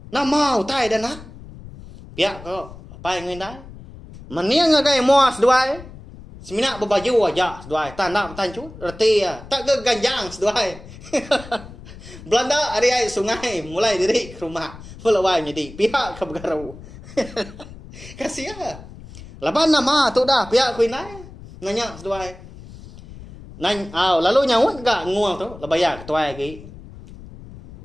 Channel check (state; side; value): noise; left; rumble, 17 dB below the sound